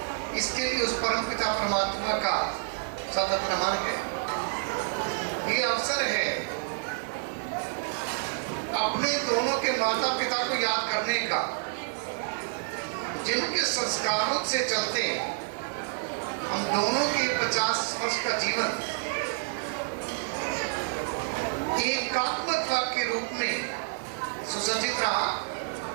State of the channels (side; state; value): left; silent; digital silence